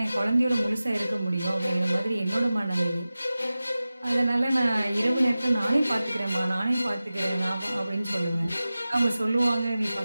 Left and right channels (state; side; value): inverted; both; correlation -0.96